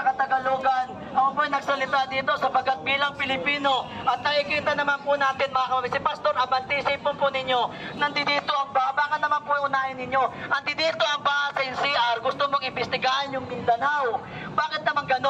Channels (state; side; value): identical; both; correlation 1.00